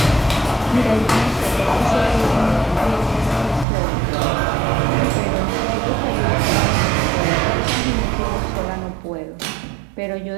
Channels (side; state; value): left; drops out; at 3.7 s